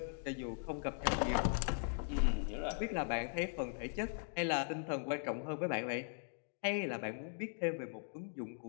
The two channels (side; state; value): right; silent; digital silence